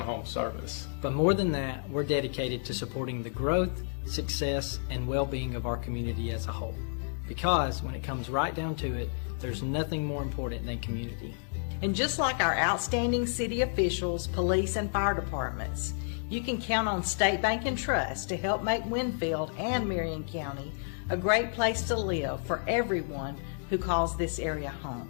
service. But more than that, we're dedicated to supporting the growth, success, and well-being of our community as a whole. Because when it comes right down to it, there's nothing more important than community. And just like our outstanding city officials, police, and fire departments, you can count on State Bank and Trust to help make Winfield and Marion County a great place to live for everyone who calls this area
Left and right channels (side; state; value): right; silent; digital silence